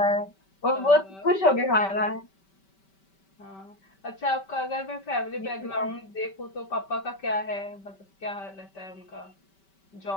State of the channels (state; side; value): late; right; 5.2 ms